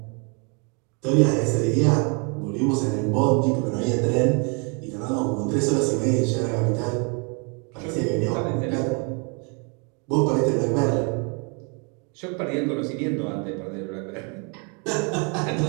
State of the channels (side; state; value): left; quieter; 35.4 dB